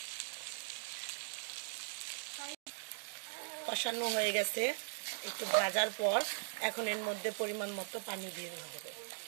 কষানো হয়ে গেছে একটু ভাজার পর, এখন এর মধ্যে পরিমাণ মতো পানি দিয়ে দেওয়া হবে।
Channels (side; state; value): left; silent; digital silence